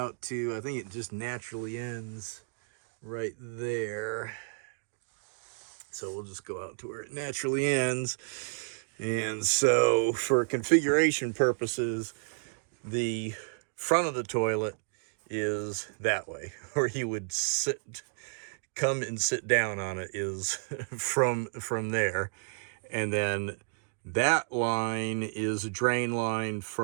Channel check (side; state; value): left; silent; digital silence